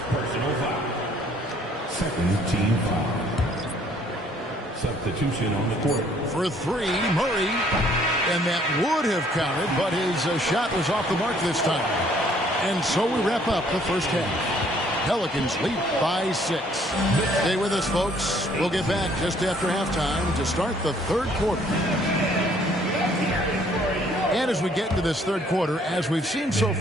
Personal foul. Second team foul. Substitution on the court. For 3, Murray. And that would have counted, but his shot was off the mark this time. And so we wrap up the first half. Pelicans lead by 6. Stay with us, folks. We'll get back just after halftime to start the third quarter. And as we get into this third quarter, as we've seen so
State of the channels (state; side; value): normal; both; correlation 0.62